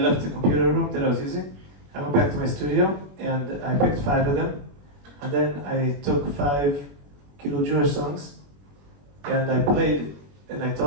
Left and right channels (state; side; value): late; left; 21 ms